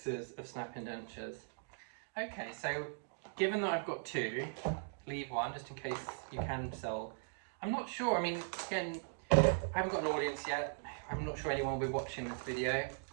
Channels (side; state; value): left; silent; digital silence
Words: of snap-in dentures. Okay, so given that I've got 2, leave 1 just in case you can sell. I'm not sure, I mean, again, I haven't got an audience yet. I'm not sure anyone will be watching this video,